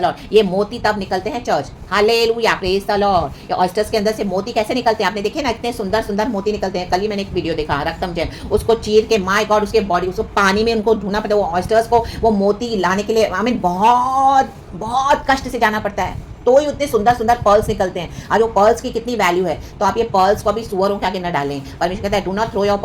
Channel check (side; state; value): both; identical; correlation 1.00